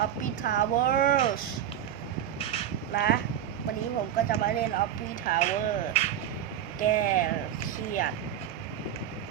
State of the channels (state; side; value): quieter; left; 10.4 dB